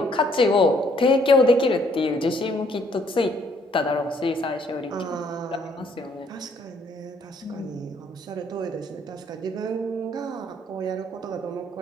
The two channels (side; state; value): both; normal; correlation 0.66